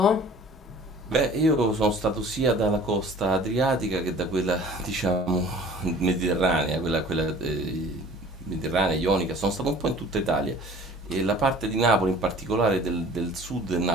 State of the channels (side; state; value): both; normal; correlation 0.48